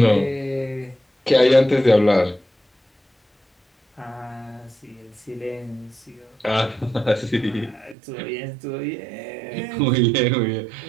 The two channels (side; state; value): left; drops out; at 8.0 s